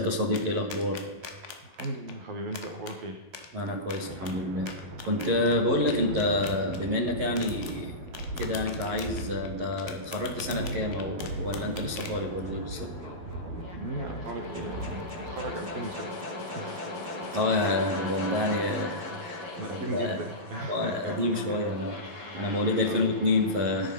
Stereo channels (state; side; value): late; left; 11 ms